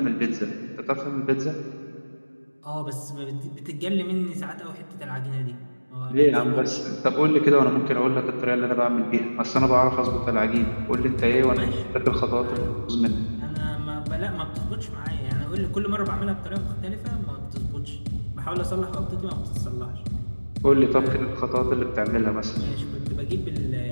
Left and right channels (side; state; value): both; inverted; correlation -1.00